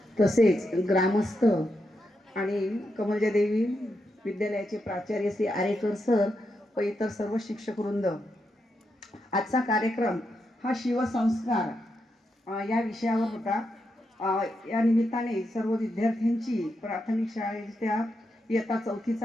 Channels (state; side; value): normal; both; correlation 0.84